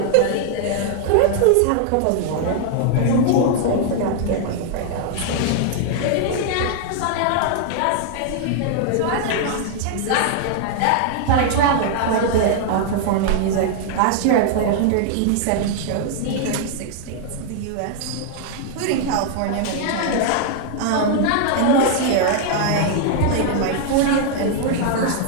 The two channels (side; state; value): both; different; correlation 0.00